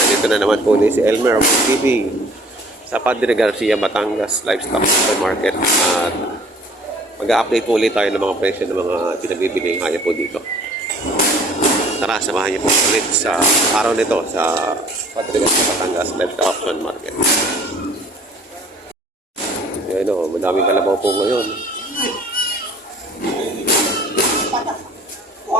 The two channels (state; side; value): normal; both; correlation 0.53